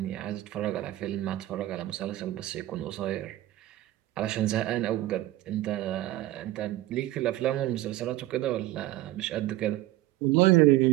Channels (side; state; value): left; quieter; 15.7 dB